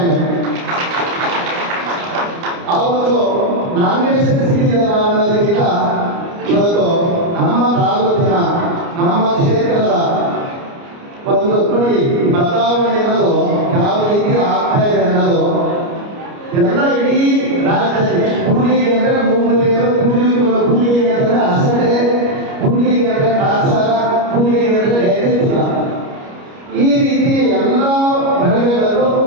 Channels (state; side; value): late; left; 29 ms